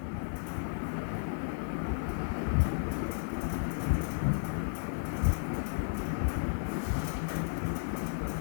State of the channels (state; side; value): silent; right; digital silence